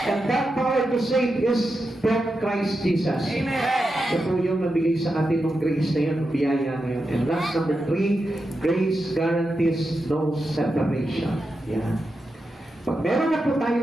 And that power to save is from Christ Jesus. Amen. Ito po yung nabigay sa atin ng grace na yun, biyaya na yun. And last, number 3, grace guarantees no separation. Yan. Pag meron na po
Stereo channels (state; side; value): normal; both; correlation 0.88